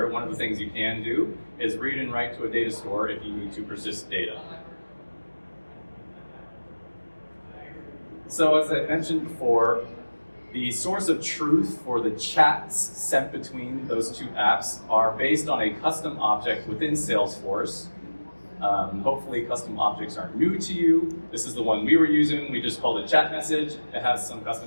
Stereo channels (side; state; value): both; inverted; correlation -1.00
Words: one of the things you can do is read and write to a data store if you need to persist data. So as I mentioned before, the source of truth for the chats sent between those two apps are based on a custom object within Salesforce. Hopefully custom objects aren't new to you. This is the one we were using. We just called it chat message. It has some